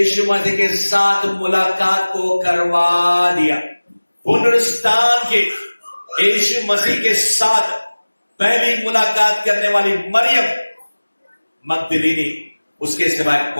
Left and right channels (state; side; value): inverted; both; correlation -1.00